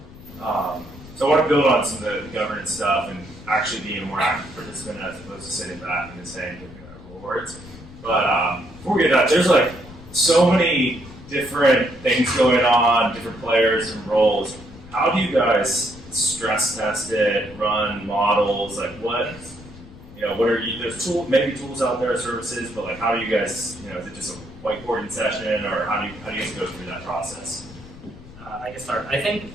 So I want to build on some of the governance stuff and actually being a more active participant as opposed to sitting back and just saying rewards. But before we get to that, there's like so many different things going on, different players and roles. How do you guys stress test it, run models? Like what are you, there's maybe tools out there, services, but like how do you guys, is it just a whiteboarding session, or how do you guys go through that process? I can start. I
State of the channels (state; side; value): noise; left; rumble, 18 dB below the sound